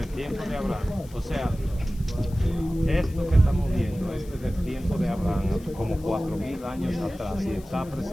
el tiempo de Abraham, o sea, esto que estamos viendo, esto es del tiempo de Abraham, como 4.000 años atrás, y está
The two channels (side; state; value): left; noise; hiss, 24 dB below the sound